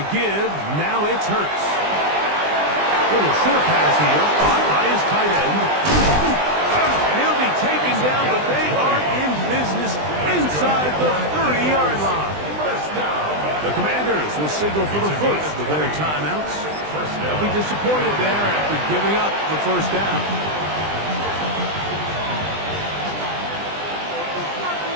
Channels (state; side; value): late; left; 20 ms